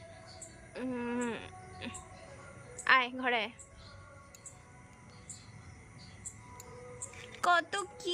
আয় ঘরে আয়। কত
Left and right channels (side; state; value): both; identical; correlation 1.00